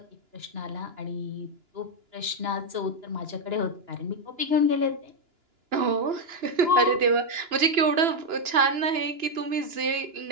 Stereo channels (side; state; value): left; late; 2.9 ms